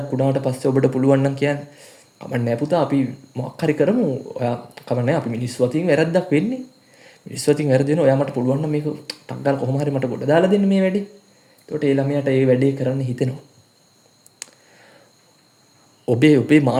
වුණාට පස්සේ ඔබට පුළුවන් නම් කියන්නේ කමන්නේ පුතා අපි මොකක් හරි කරමු. ඔයා කමන්නේ අපි මිනිස්සු අතින් වැරද්දක් වෙන්නේ. මිනිස්සු අතින් වැරදි වෙනවා. ඔයා මට පුළුවන් නම් මේක ටක් ගාලා කොහොම හරි මට ගොඩ දාලා දෙන්න මේ වැඩේ. එතකොට ඒ ළමයාට ඒ වැඩේ කරන්න හිතෙනවා. ඔබේ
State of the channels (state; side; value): identical; both; correlation 1.00